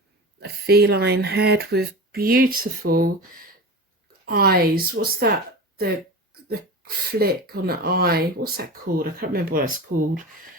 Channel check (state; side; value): normal; both; correlation 0.30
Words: a feline head with beautiful eyes. What's that? The flick on the eye. What's that called? I can't remember what it's called.